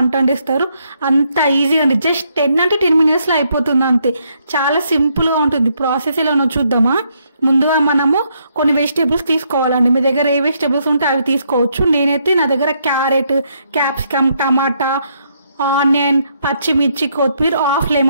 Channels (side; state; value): both; inverted; correlation -0.74